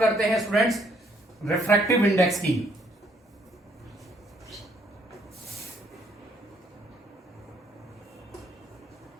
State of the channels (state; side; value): normal; both; correlation 0.68